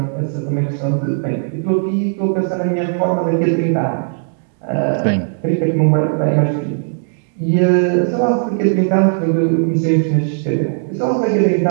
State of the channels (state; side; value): silent; left; digital silence